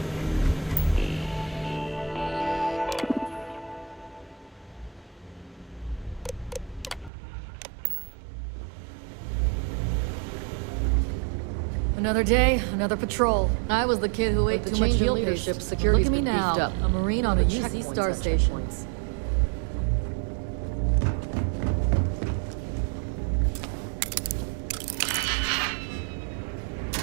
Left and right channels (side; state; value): left; drops out; at 7.1 s